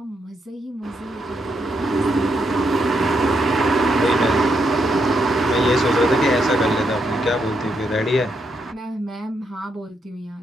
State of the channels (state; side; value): normal; both; correlation 0.79